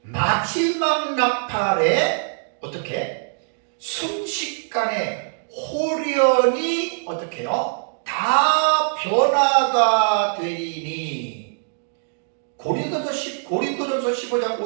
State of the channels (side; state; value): left; silent; digital silence